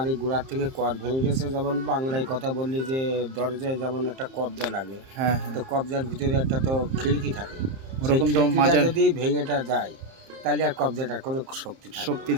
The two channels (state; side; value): late; left; 30 ms